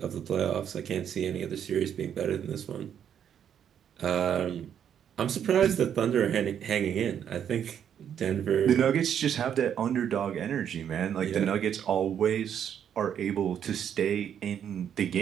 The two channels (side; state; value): left; quieter; 9.0 dB